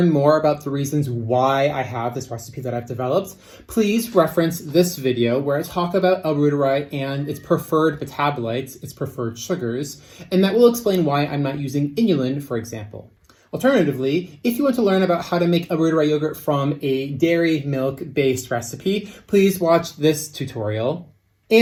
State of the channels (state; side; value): identical; both; correlation 1.00